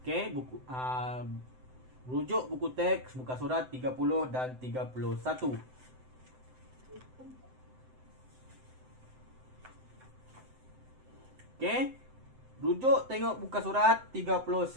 Okey, rujuk buku teks muka surat 30 dan 31. Okey. Rujuk tengok muka surat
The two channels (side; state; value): left; late; 7.8 ms